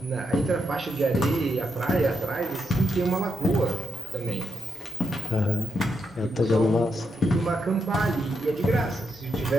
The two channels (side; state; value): both; normal; correlation 0.82